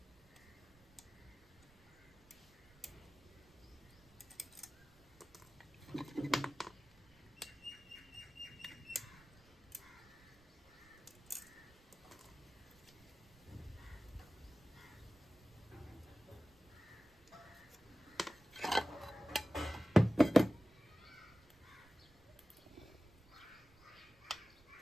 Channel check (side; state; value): right; noise; rumble, 28 dB below the sound